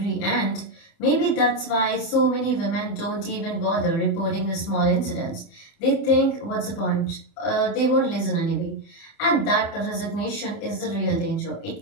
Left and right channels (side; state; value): right; late; 30 ms